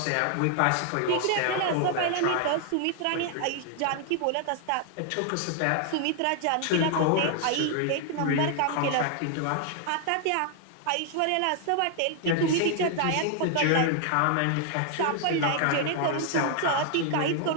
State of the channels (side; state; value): both; different; correlation 0.00